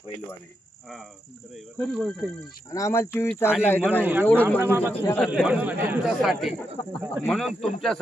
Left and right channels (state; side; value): normal; both; correlation 0.83